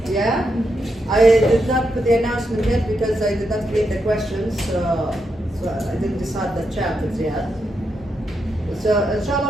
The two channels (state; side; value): normal; both; correlation 0.83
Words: Yeah, I did not put the announcement yet because I did not create the questions, so I didn't decide the chapters yet. So